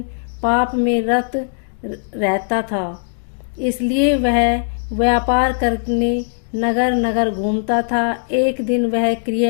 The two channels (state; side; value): silent; right; digital silence